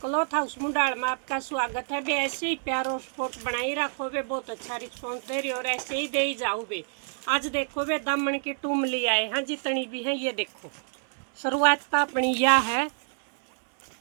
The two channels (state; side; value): silent; left; 60 dB below the other